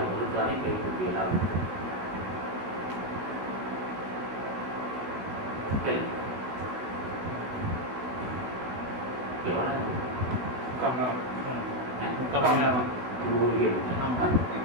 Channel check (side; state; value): left; late; 16 ms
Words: மறுத்தானே கைக்கூப்பி எல்லா உயிர்களும்.